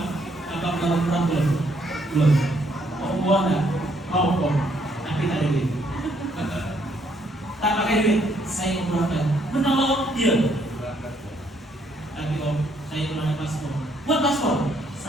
abang mau umroh belum? Belum. Oh, buah enggak? Mau Om, tapi tak ada duit. Tak pakai duit, saya umrohkan. Menolong dia. Tapi Om, saya belum ada paspor. Buat paspor,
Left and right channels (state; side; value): normal; both; correlation 0.70